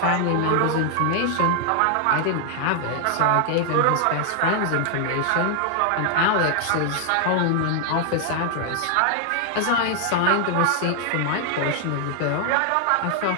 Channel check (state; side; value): different; both; correlation 0.00